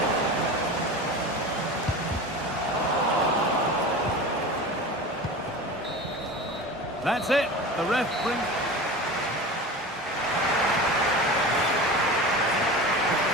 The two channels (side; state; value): both; normal; correlation 0.32